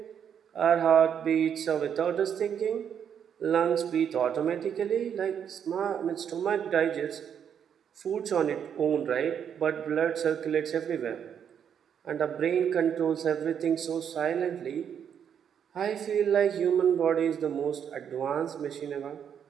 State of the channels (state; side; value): quieter; left; 8.3 dB